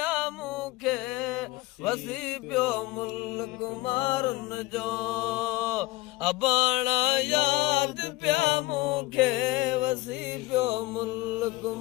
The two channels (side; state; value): right; quieter; 20.4 dB